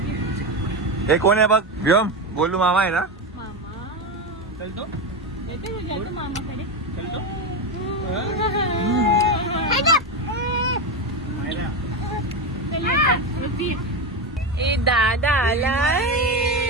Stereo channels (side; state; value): both; normal; correlation 0.14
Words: हे कोण आहे बघ? व्योम बोलू मामा आहे ना? चलतो मामाकडे चलतो. ए दादा आलाय.